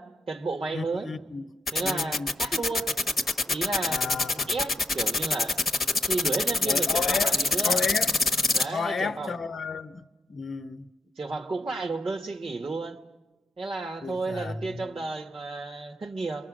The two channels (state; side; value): normal; both; correlation 0.79